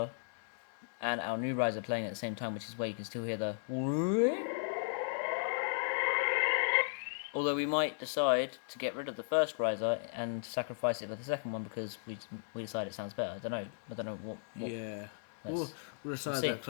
and our new riser playing at the same time, which is where you can still hear the... Although we might decide to get rid of the first riser and sacrifice it for the second one because we decide it sounds better. I don't know what yeah. We'll decide that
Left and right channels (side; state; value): right; silent; digital silence